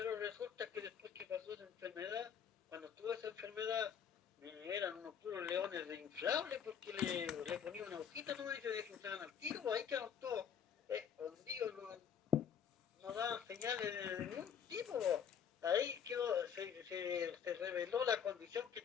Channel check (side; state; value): right; quieter; 7.8 dB